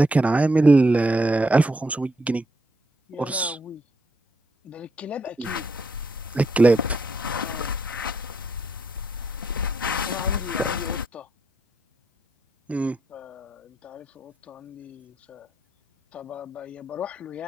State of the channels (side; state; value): both; normal; correlation 0.77